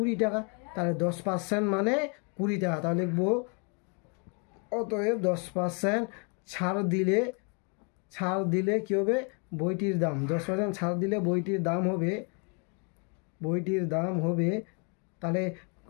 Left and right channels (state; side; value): quieter; right; 36.9 dB